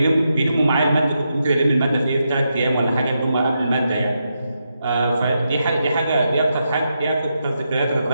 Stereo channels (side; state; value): both; inverted; correlation -0.84